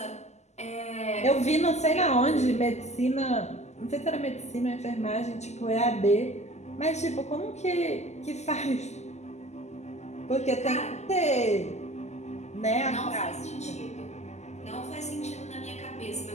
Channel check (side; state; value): right; late; 0.33 ms